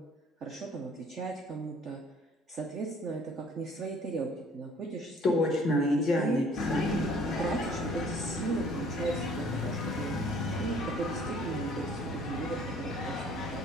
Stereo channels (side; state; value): both; normal; correlation 0.55